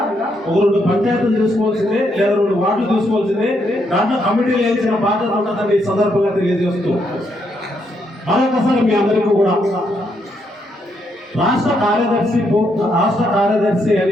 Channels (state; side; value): normal; both; correlation 0.76